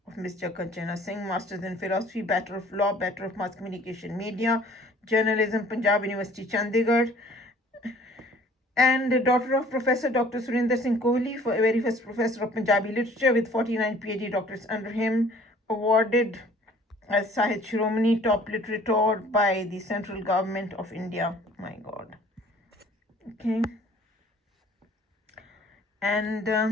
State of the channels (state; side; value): normal; both; correlation 0.53